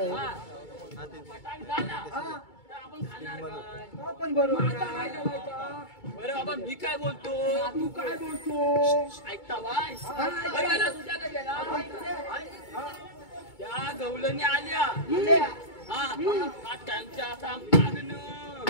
फटाक झाला आपण खाणार काय पण बरोबर काय करायचं बरं बाबा मी काय बोलतो तू काय बोलतो ऐकता बाय तुझ्याकडे गेला त्या गवळणी आल्या हा त्यांच्या असा मागणं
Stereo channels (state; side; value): late; right; 2.2 ms